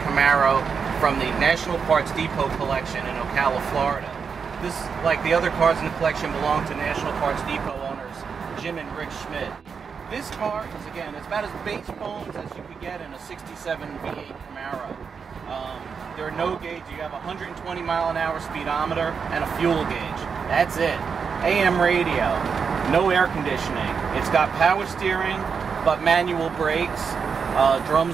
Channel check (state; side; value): quieter; left; 6.0 dB